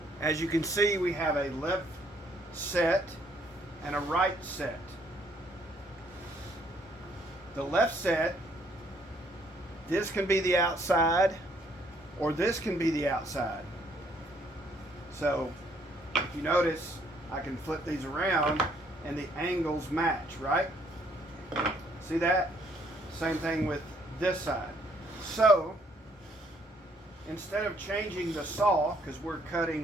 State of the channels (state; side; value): normal; both; correlation 0.66